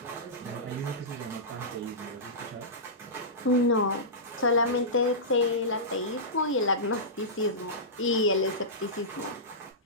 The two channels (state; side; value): normal; both; correlation -0.17